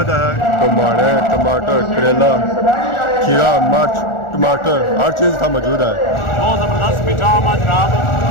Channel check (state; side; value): late; right; 1.4 ms